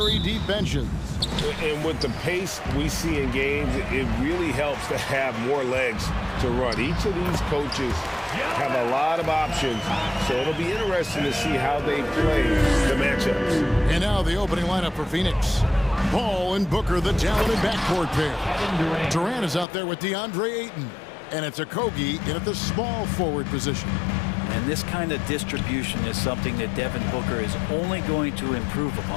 deep benches. And with the pace we see in games, it really helps to have more legs to run. Each of these coaches have a lot of options, so it'll be interesting to see how they play the matchups. And now the opening lineup for Phoenix. Paul and Booker, the talented backcourt pair. Durant is out there with DeAndre Ayton. And it's Okogie in at the small forward position. And this kind of distribution is something that Devin Booker is only going to improve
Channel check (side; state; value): right; drops out; at 19.7 s